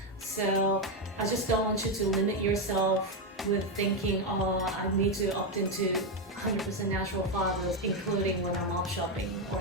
So I just don't want you to limit yourself with thinking, oh, I need to opt into 100% natural fibers, including when I'm op shopping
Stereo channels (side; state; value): both; normal; correlation 0.06